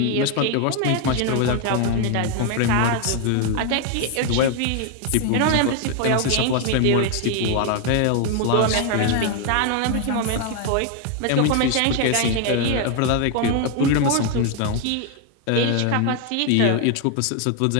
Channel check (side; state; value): both; different; correlation 0.01